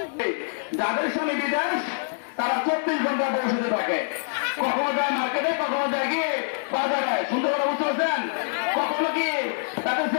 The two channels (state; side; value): silent; right; digital silence